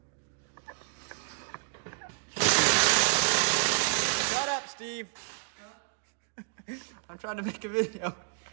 Shut up, Steve. I'm trying to make a video.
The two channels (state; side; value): silent; left; digital silence